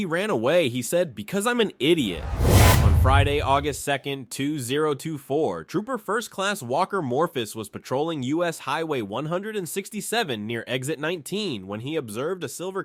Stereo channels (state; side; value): identical; both; correlation 1.00